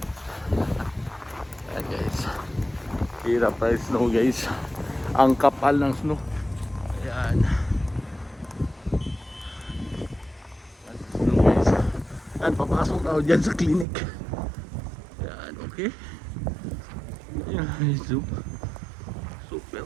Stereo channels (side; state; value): left; drops out; at 13.9 s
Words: Ayan guys, hirap ang snow guys. Ang kapal ng snow. Ayan. Snow guys. Ayan, papasok ako dyan sa clinic. Ayan, okay. Ayan, super